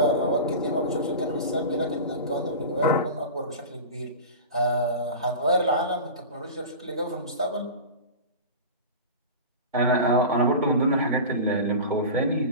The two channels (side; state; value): both; inverted; correlation -0.30